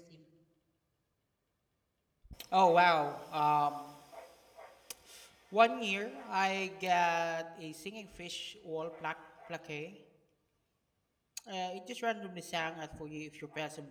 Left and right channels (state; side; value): identical; both; correlation 1.00